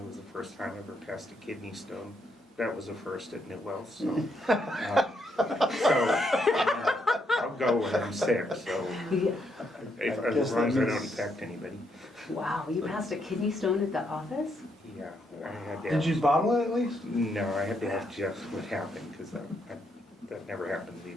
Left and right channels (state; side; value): normal; both; correlation 0.76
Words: was the first time I ever passed a kidney stone. That was a first at Newell, so I'll go when I'm sick, so Yeah. as long as I don't infect anybody. Wow, you passed a kidney stone at the office? Yeah, I had to Did you have, bottle it at least? no, I had to ask Jeff what happened, because that never happened to me